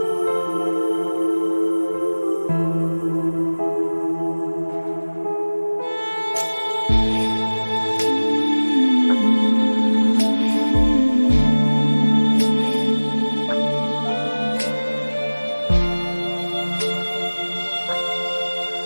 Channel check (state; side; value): inverted; both; correlation -1.00